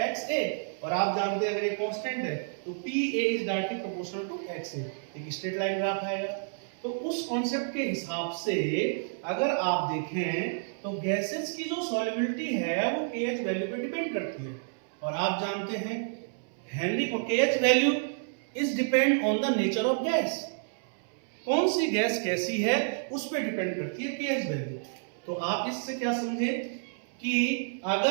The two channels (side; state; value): left; silent; 58 dB below the other